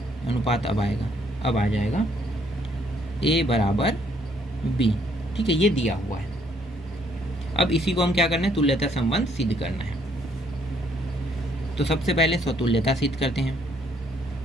अनुपात अब आएगा, अब आ जाएगा ए बराबर बी। ठीक है, ये दिया हुआ है। अब इसी को हम क्या करना है, तुल्यता संबंध सिद्ध करना है। तो सबसे पहले स्वतुल्यता सिद्ध करते हैं।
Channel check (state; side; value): normal; both; correlation 0.67